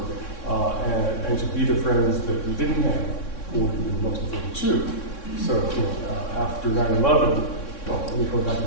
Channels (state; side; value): late; right; 3.6 ms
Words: and to be the friends that we didn't have or most of 42. So, after 9/11, let me go back